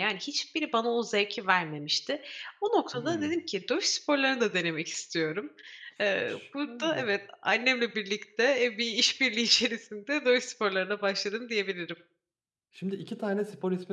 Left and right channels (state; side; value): identical; both; correlation 1.00